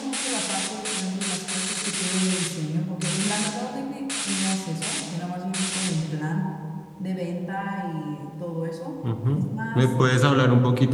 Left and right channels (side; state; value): both; identical; correlation 1.00